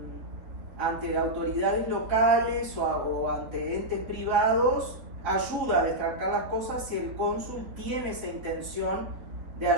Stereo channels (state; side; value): late; left; 3.6 ms